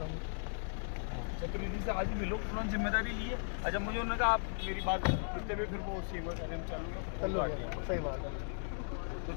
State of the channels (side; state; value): right; silent; digital silence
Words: चतुर्वेदी से आज ही मिलो, उन्होंने जिम्मेदारी ली है। अच्छा मुझे उन्होंने कहा आप मेरी बात करते हुए फिर वो सीएम का कार्यक्रम चालू है, सही बात है। तो